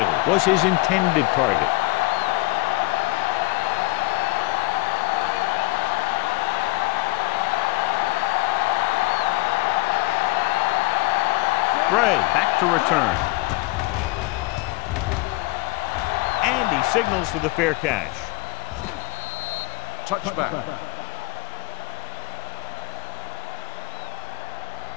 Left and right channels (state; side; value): quieter; right; 23.5 dB